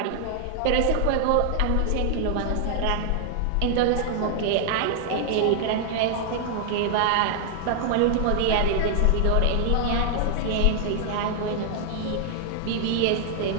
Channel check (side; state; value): both; different; correlation 0.00